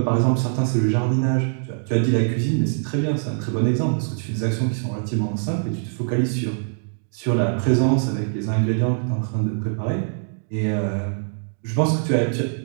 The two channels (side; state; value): left; silent; digital silence